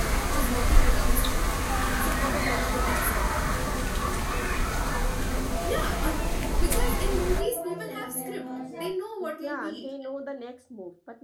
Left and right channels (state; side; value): identical; both; correlation 1.00